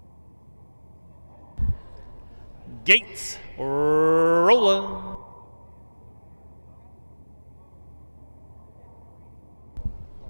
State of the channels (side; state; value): both; inverted; correlation -1.00